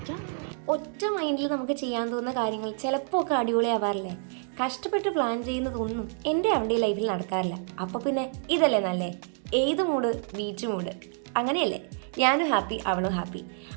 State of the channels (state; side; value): silent; left; 59 dB below the other